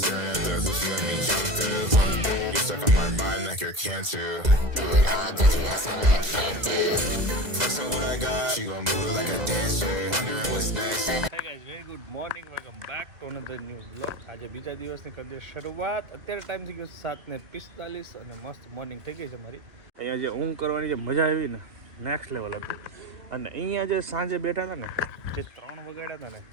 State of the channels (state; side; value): late; left; 2.0 ms